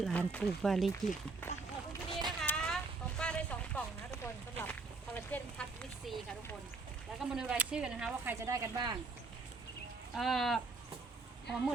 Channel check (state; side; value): quieter; left; 3.9 dB